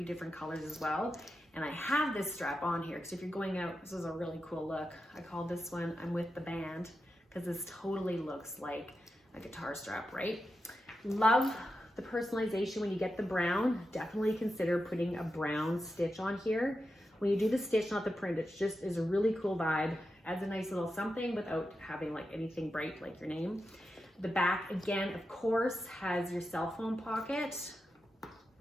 different colors as well. And I have this strap on here because if you're going out, this is a really cool look. I call this one I'm with the band because this totally looks like a guitar strap, right? Love the personalization when you get the brown. Definitely consider putting a brown stitch on here. When you do the stitch, not the print, it just is a really cool vibe. Adds a nice little something without having like anything bright like your name. The back, again, of course, has your cell phone pocket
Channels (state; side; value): normal; both; correlation 0.89